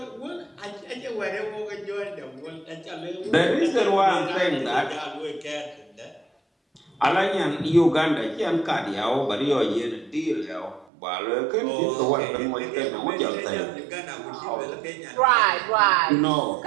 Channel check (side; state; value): left; drops out; at 10.9 s